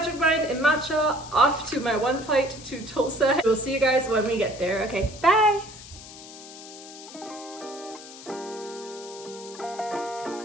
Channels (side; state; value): left; noise; hiss, 16 dB below the sound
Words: Mind and matcha off to my one flight to Tulsa. We'll see you guys when we get there. Okay, bye.